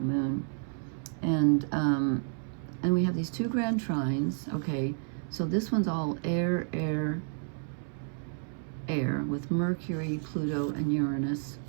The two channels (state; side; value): silent; left; 57 dB below the other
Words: And we have these two grand trines. Okay, so this one's all air with Mercury, Pluto, and Uranus,